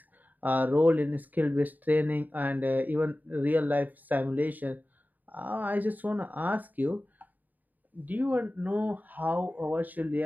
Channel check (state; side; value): late; left; 0.084 ms